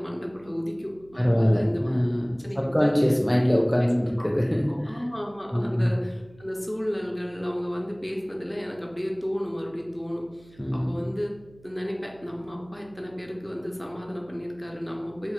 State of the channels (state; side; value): noise; right; hum, 25 dB below the sound